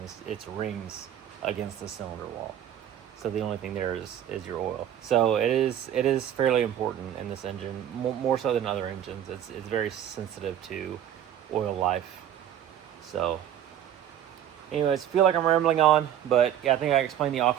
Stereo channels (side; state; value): left; quieter; 10.5 dB